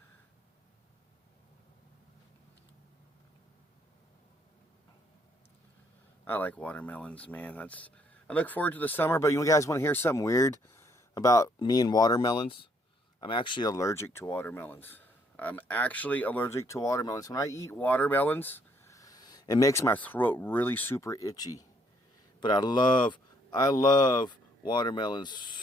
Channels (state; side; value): normal; both; correlation 0.69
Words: I like watermelons, man. I look forward to the summer, but you guys want to hear something weird about me and watermelons? I'm actually allergic to watermelons. I'm actually allergic to watermelons. When I eat watermelons, it makes my throat really super itchy. But I love watermelons